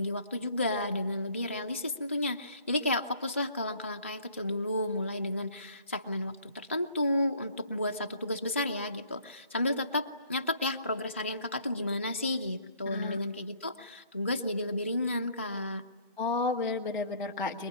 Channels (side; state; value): both; inverted; correlation -0.57